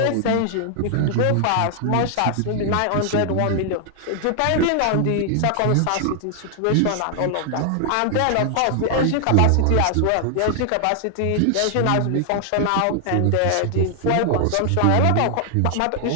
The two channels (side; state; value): both; different; correlation 0.00